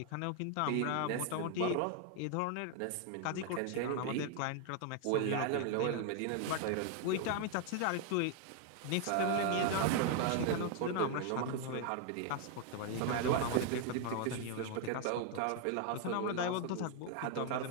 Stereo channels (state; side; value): different; both; correlation 0.00